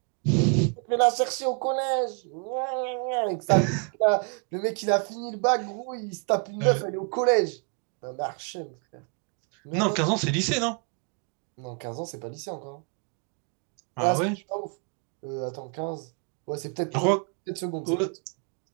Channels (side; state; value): left; quieter; 39.2 dB